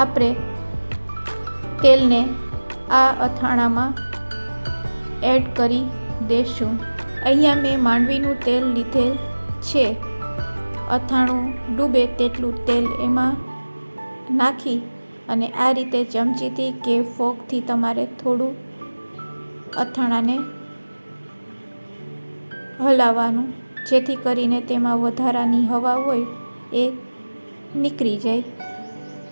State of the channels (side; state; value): both; inverted; correlation -1.00